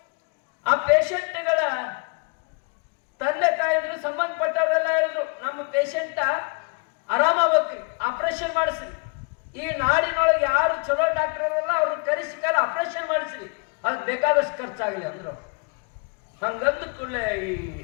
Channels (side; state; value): right; quieter; 34.2 dB